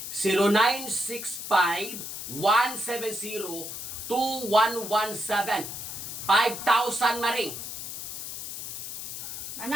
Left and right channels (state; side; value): noise; left; hiss, 7 dB below the sound